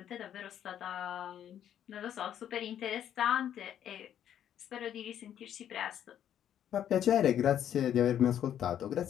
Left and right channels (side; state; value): right; quieter; 10.2 dB